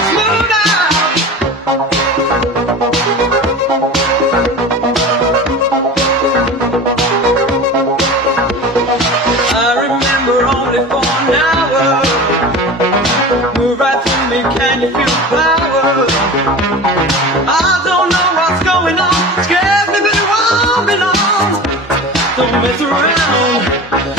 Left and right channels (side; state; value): both; normal; correlation 0.34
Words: smooth out. I remember only for an hour. Move right through me, can you feel the power? I don't know what's going on, scares me but it won't be long. Don't mess around,